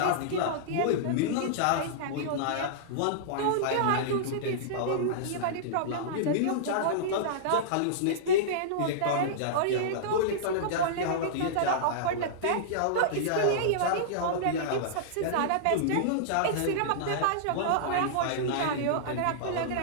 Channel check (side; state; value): both; different; correlation -0.03